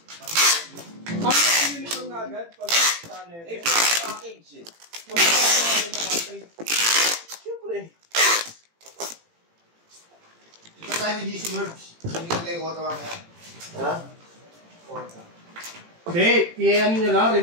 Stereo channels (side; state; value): left; late; 18 ms